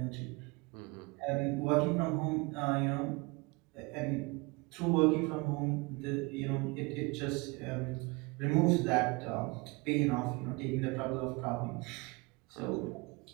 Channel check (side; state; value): left; quieter; 27.0 dB